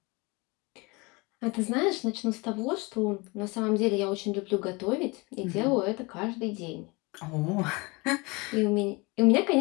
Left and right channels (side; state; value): right; quieter; 26.4 dB